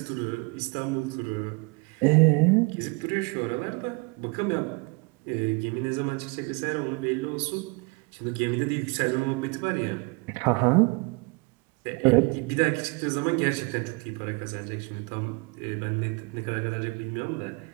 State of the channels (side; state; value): left; quieter; 29.4 dB